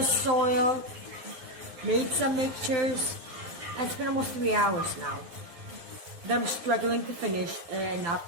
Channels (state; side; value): late; left; 12 ms